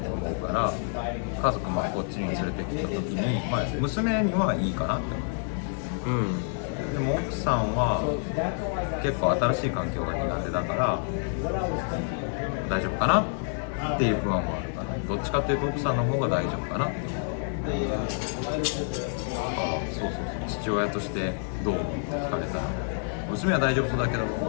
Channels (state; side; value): silent; right; 59 dB below the other